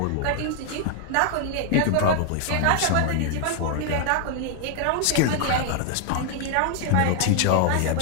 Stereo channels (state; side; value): different; both; correlation 0.00